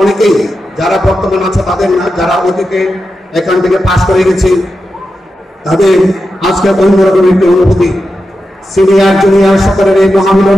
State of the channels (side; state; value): both; normal; correlation 0.90